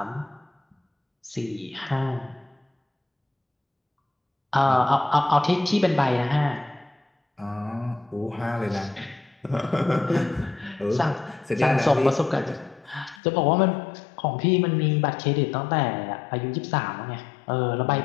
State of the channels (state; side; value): drops out; right; at 13.2 s